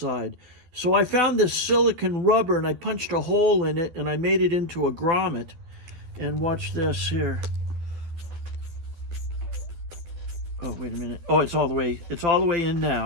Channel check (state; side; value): late; left; 12 ms